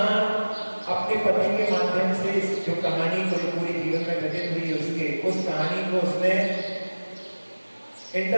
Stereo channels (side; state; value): both; inverted; correlation -1.00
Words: अपने पति के माध्यम से इस जो कहानी को पूरी जीवन में घटित हुई उसके उस कहानी को उसने